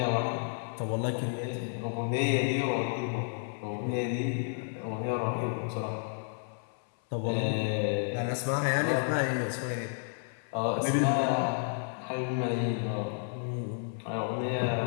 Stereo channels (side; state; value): right; silent; 57 dB below the other